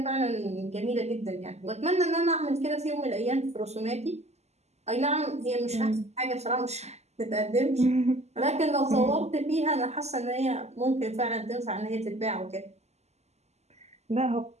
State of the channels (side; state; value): left; late; 0.32 ms